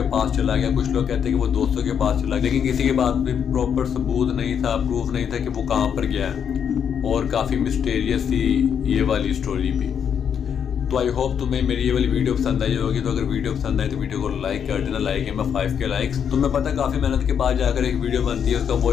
पास चला गया, कुछ लोग कहते हैं कि वो दोस्तों के पास चला गया, लेकिन किसी के पास भी प्रॉपर सबूत नहीं था, प्रूफ नहीं था कि वो कहाँ पर गया है। और काफ़ी मिस्टीरियस थी ये वाली स्टोरी भी। तो आई होप तुम्हें मेरी ये वाली वीडियो पसंद आई होगी। तो अगर वीडियो पसंद आए तो वीडियो को लाइक कर देना। लाइक है मैं 5 के लाइक्स। तुम्हें पता है काफ़ी मेहनत के बाद जाकर एक वीडियो बनती है, उसका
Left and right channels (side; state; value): right; quieter; 7.9 dB